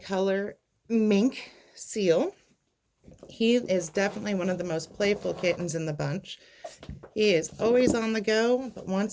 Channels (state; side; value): identical; both; correlation 1.00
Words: mink seal. He is definitely one of the most playful kittens in the bunch. He is always on the go, but